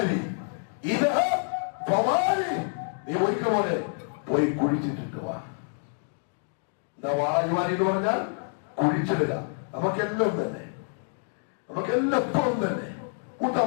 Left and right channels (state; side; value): silent; right; 60 dB below the other